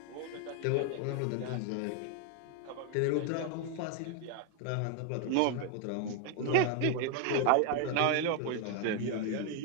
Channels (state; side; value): different; both; correlation 0.00